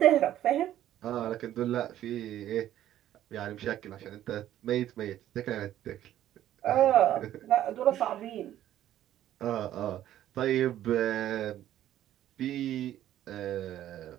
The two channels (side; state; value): left; quieter; 12.4 dB